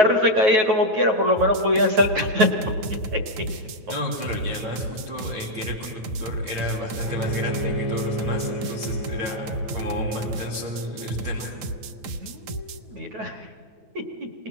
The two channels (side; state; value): left; late; 9.7 ms